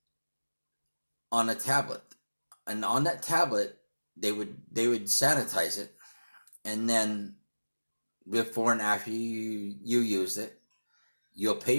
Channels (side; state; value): both; inverted; correlation -1.00